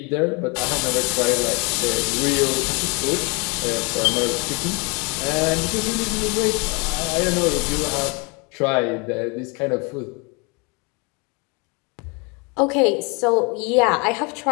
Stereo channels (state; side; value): quieter; right; 30.6 dB